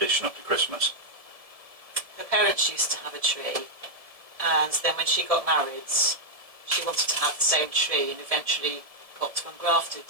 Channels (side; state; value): left; late; 1.7 ms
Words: up to Christmas. Her parents used to have a tree, and then when she got married, she wanted to have the same tree and eventually got to ungraft it,